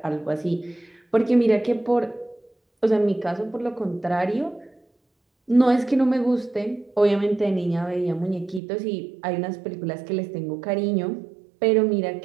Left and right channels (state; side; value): drops out; left; at 8.6 s